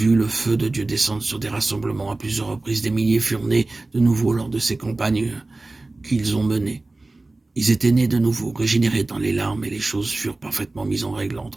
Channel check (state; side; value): quieter; left; 3.1 dB